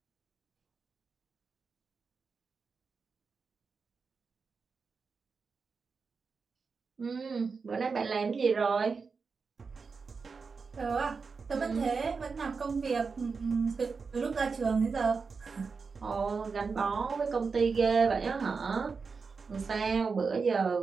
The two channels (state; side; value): quieter; left; 5.0 dB